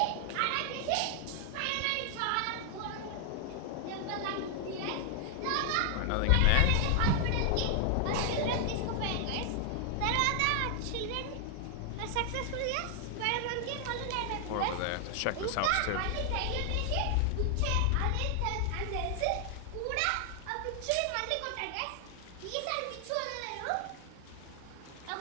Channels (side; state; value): both; different; correlation 0.00